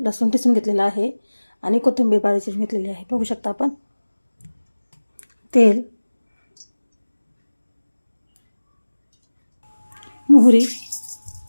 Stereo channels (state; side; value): inverted; both; correlation -1.00